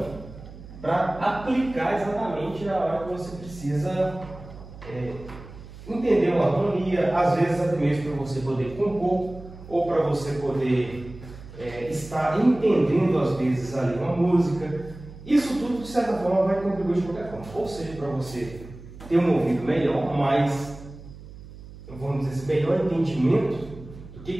para aplicar exatamente na hora que você precisa entender uma harmonia, às vezes até mesmo para você poder compor, ou para você poder estar entendendo às vezes ali uma música. Isso tudo, de certa forma, vai contribuir de qualquer forma. Ou seja, para você ter um ouvido melhor, mais, vamos dizer, melhor entendimento do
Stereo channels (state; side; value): noise; right; hum, 16 dB below the sound